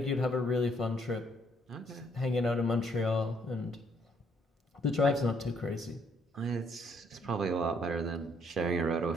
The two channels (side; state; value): both; normal; correlation 0.68